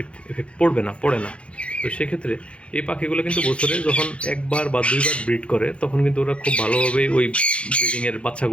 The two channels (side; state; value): right; late; 0.060 ms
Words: এফেক্ট পড়ে না। তো সেক্ষেত্রে এই পাখিগুলো কিন্তু বছরে যখন একবার বা 2বার ব্রিড করে, তখন কিন্তু ওরা খুব ভালোভাবেই ওই ব্রিডিংয়ের